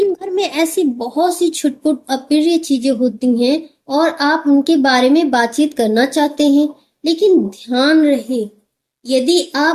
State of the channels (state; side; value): identical; both; correlation 1.00